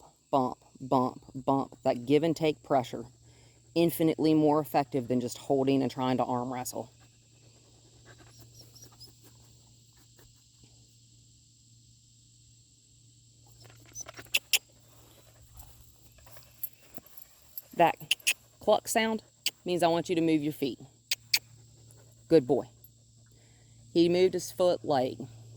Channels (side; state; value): both; identical; correlation 1.00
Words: bump, bump, bump. That give and take pressure. Infinitely more effective than just holding and trying to arm wrestle. That cluck sound means I want you to move your feet. Good boy. He moved his foot leg,